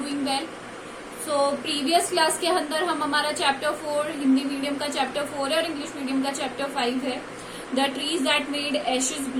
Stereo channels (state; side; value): identical; both; correlation 1.00